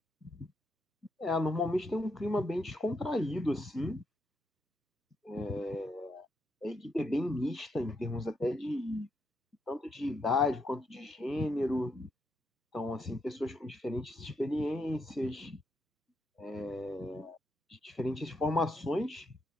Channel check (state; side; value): normal; both; correlation 0.80